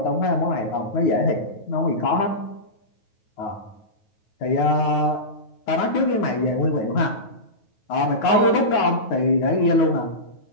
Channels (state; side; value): late; right; 9.3 ms